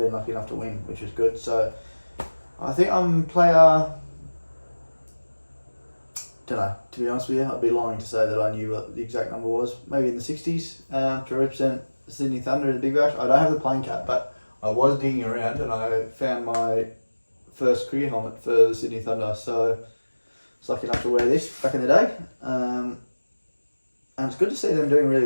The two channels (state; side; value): inverted; both; correlation -1.00